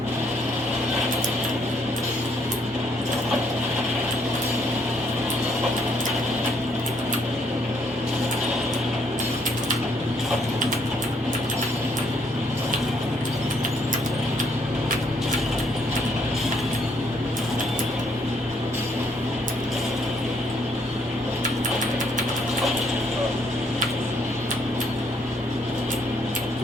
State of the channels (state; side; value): normal; both; correlation 0.69